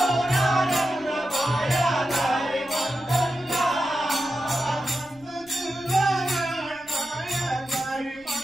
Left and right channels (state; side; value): noise; left; rumble, 27 dB below the sound